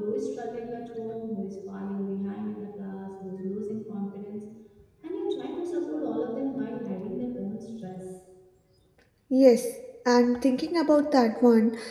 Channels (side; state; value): both; identical; correlation 1.00